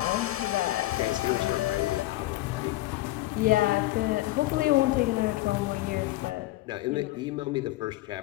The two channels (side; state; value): right; quieter; 17.3 dB